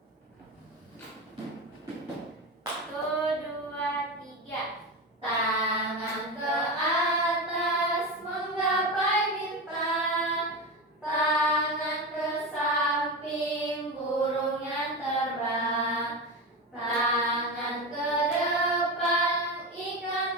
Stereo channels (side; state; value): both; normal; correlation 0.21